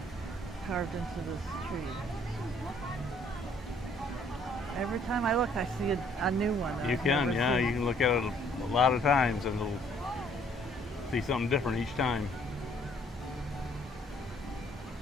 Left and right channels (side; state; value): both; normal; correlation 0.62